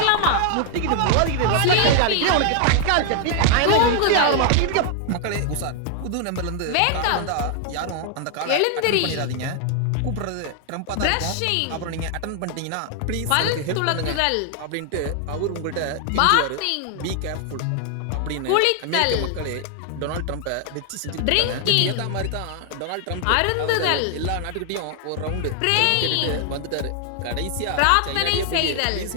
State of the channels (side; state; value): both; different; correlation 0.00